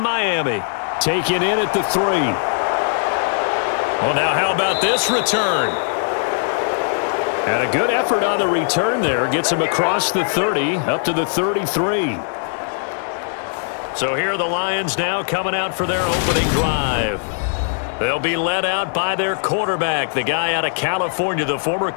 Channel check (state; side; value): silent; right; 62 dB below the other